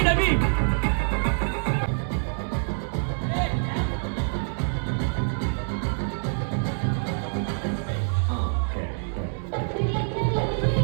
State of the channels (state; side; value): silent; left; digital silence